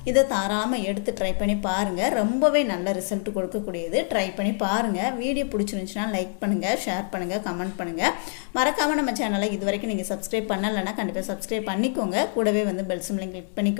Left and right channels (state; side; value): silent; right; 61 dB below the other